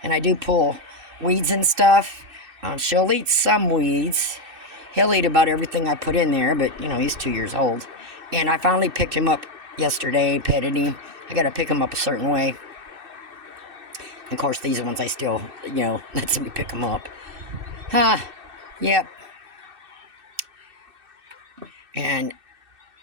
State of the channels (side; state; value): left; late; 2.6 ms